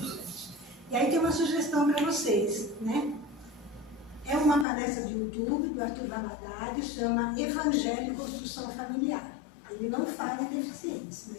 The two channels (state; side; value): drops out; right; at 4.7 s